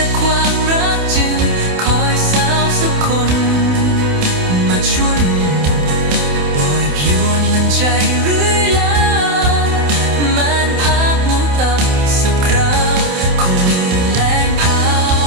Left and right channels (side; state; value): left; late; 28 ms